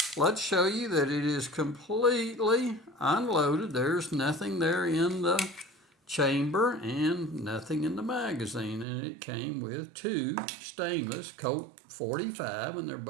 let's show you that it is completely unloaded. There's nothing there in the chamber and nothing in the magazine, and it came with two stainless Colt 45, and they're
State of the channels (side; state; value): left; drops out; at 8.8 s